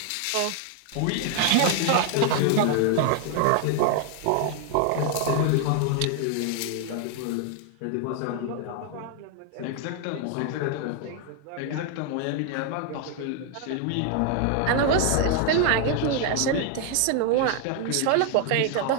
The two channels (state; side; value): different; both; correlation 0.00